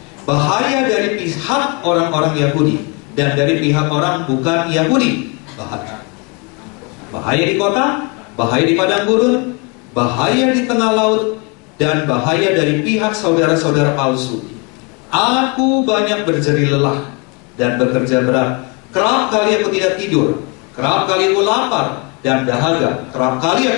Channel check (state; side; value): quieter; right; 31.7 dB